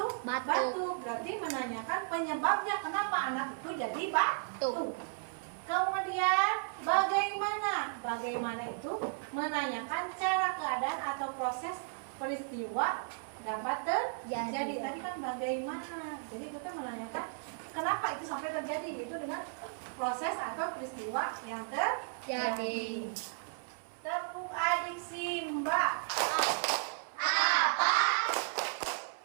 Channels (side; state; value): left; silent; 55 dB below the other